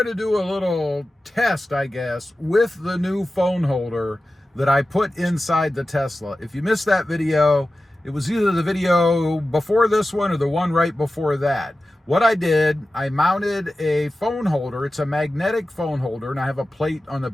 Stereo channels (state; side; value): normal; both; correlation 0.94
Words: to do a little test, I guess, with the new phone holder that I put inside the Tesla. If you missed that video, it was either the video before this one or the one right before that. What I did, I mounted a phone holder. It's a magnetic phone holder, and I have a plate on the